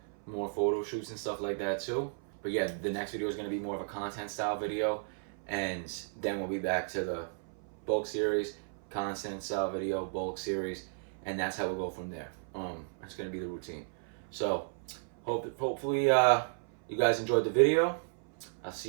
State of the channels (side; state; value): left; silent; 55 dB below the other